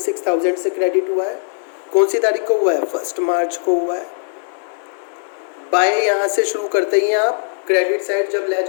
से क्रेडिट हुआ है। कौन सी तारीख को हुआ है, 1 मार्च को हुआ है। बाय यहाँ से शुरू करते ही आप, क्रेडिट साइड जब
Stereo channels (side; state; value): right; silent; 66 dB below the other